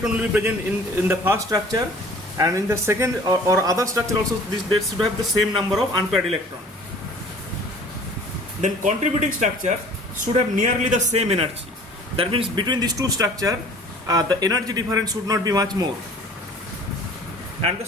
will be present in the first structure, and in the second or other structure also, they should have the same number of unpaired electrons. Then contributing structure should have nearly the same energy. That means between these two structures, the energy difference should not be much more. And the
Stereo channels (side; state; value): both; normal; correlation 0.48